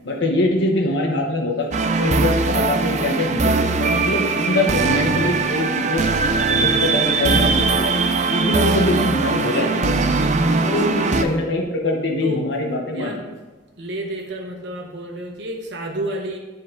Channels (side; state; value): both; normal; correlation 0.34